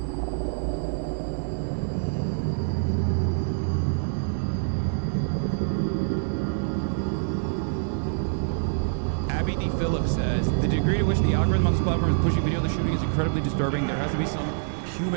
Abby D. Phillips says, the degree to which the algorithm on this platform is pushing video of the shooting is incredibly disturbing. There has to be some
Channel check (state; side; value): silent; left; digital silence